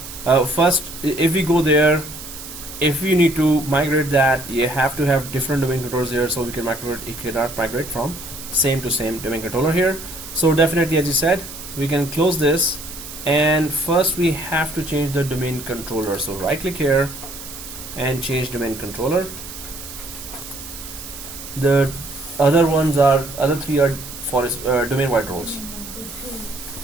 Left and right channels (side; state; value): right; noise; hiss, 12 dB below the sound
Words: first, if we go there, if we need to migrate that, you have to have different domain controllers here, so we can migrate. You cannot migrate from same to same domain controller here. So definitely, as you said, we can close this, and first we have to change the domain controller. So right click here and change domain controller. The other three are forest domain wide roles.